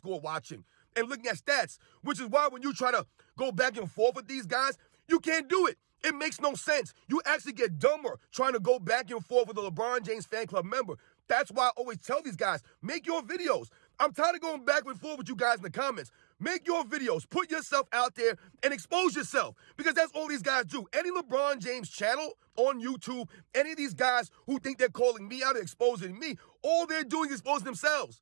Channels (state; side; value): silent; left; digital silence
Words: watching and looking at stats, which is why when you try to go back and forth with these guys, you can't do it. It makes no sense. You actually get dumber trying to go back and forth with a LeBron James fan club member. That's why I always tell these guys, make your videos. I'm tired of going back and forth with you guys in the comments. Make your videos, put yourself out there and expose yourself, because that's all these guys do. Any LeBron James channel on YouTube, any of these guys who think they're calling me out or exposing me, all they're doing is exposing themselves.